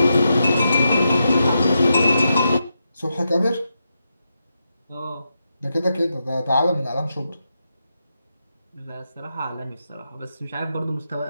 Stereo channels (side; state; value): both; inverted; correlation -0.86